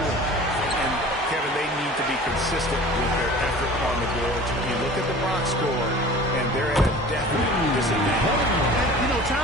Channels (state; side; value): normal; both; correlation 0.42